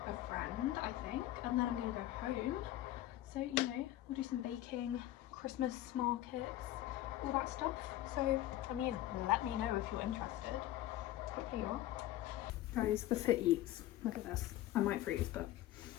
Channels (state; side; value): quieter; right; 14.5 dB